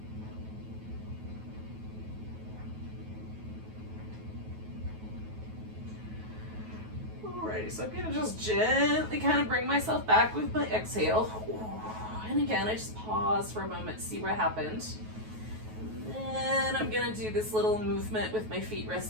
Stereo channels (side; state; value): left; late; 9.3 ms